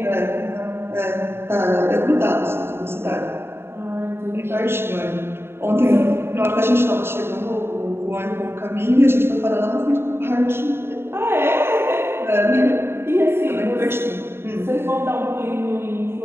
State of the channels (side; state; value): left; late; 0.11 ms